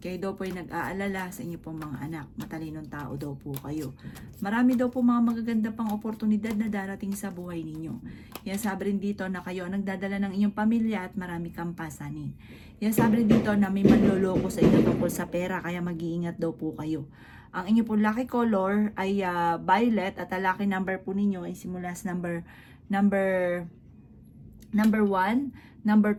daw po ay nag-aalala sa inyo pong mga anak. Matalinong tao daw po kayo. Marami daw po mga magaganda pang oportunidad na darating sa buhay ninyo. Kaya sabi rin dito na kayo ang nagdadala ng inyong pamilya at marami kang pasanin. Kaya sabi rin dito na may manloloko sa inyo tungkol sa pera kaya mag-iingat daw po kayo. Ang inyo pong lucky color ay violet at ang lucky number po ninyo ay simula sa number 1, number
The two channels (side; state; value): both; identical; correlation 1.00